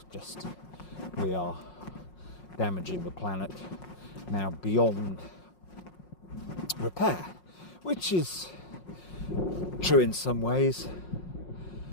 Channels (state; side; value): late; right; 5.5 ms